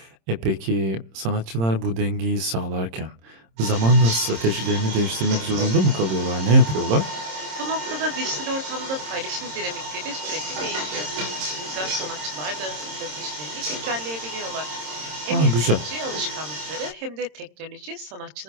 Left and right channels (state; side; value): late; left; 26 ms